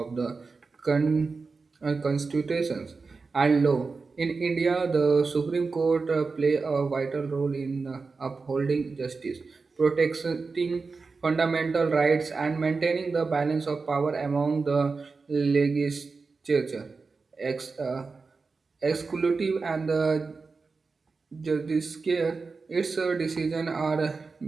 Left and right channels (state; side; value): quieter; left; 4.4 dB